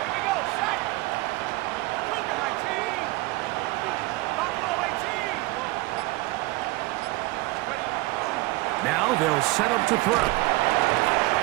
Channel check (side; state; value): left; quieter; 21.2 dB